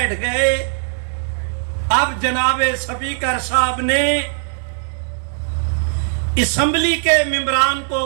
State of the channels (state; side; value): silent; left; 55 dB below the other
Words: گئے. اب جناب سپیکر صاحب نے اسمبلی کے ممبران کو